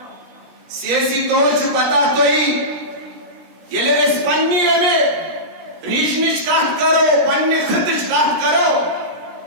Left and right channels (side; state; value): left; late; 17 ms